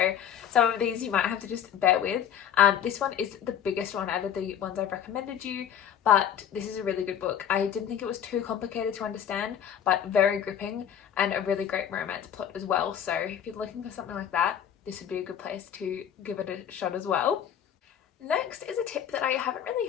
some of these you might have to just bear with. This one is the biggest one out of the ones I've recommended you, but this is a really good book. I didn't think it was too complicated to understand, but very gripping, and a really great romance plot as well. So if you're looking for something like that, this would be a good place to give it a shot as well. Next is a tip that I haven't really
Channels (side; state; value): right; quieter; 9.1 dB